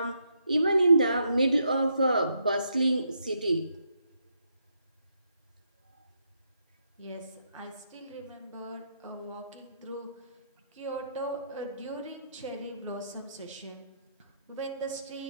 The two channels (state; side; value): inverted; both; correlation -0.78